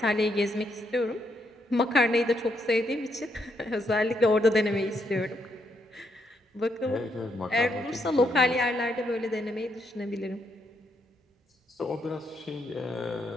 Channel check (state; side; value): normal; both; correlation 0.77